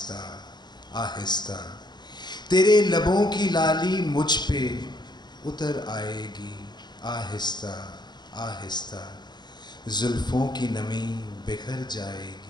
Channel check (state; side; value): late; right; 0.21 ms